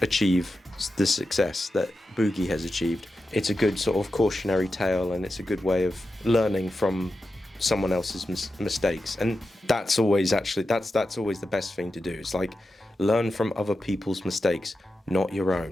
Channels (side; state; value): both; normal; correlation 0.90